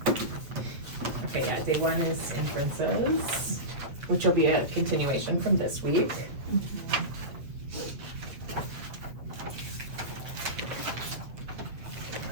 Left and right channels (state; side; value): late; left; 8.3 ms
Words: okay, yeah, day 1 is inferences, which will be a continuation from this week.